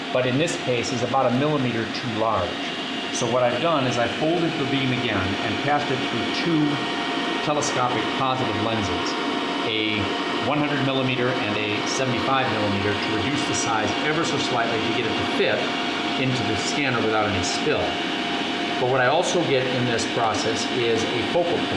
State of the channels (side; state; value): both; identical; correlation 1.00